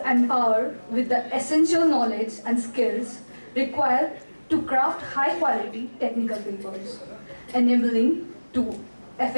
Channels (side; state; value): both; inverted; correlation -1.00